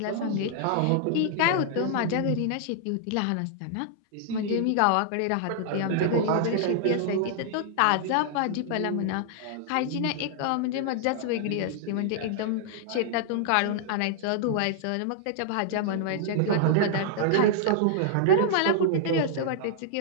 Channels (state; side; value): different; both; correlation -0.01